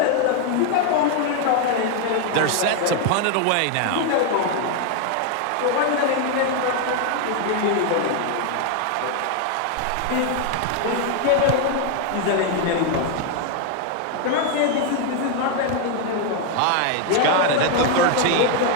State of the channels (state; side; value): different; both; correlation 0.01